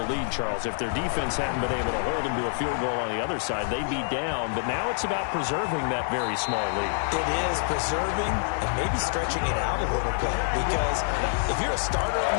lead, Charles. If their defense hadn't been able to hold them to a field goal on the other side, they'd be down. But now it's about preserving that very small lead. It is preserving and maybe stretching it out a little bit. Because if you're a starter on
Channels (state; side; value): silent; right; digital silence